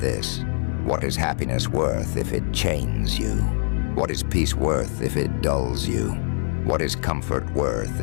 what is happiness worth if it chains you? What is peace worth if it dulls you? What is comfort worth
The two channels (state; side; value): silent; right; 63 dB below the other